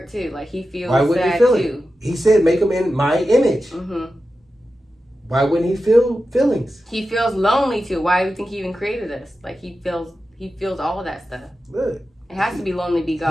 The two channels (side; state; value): both; normal; correlation 0.92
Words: too. Like he feels why wouldn't sad he feel too. It? He said, "Make him in my image." Why wouldn't he feel feelings? He feels lonely too. Why do you think he even created us? Like he feels all of that stuff. Look, it has to be lonely to be